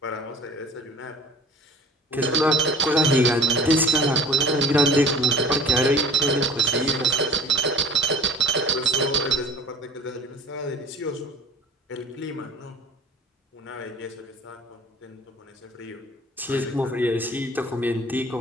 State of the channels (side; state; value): both; normal; correlation 0.45